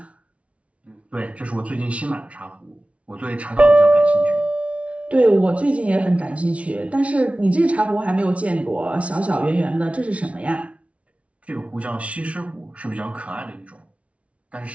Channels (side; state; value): left; late; 0.063 ms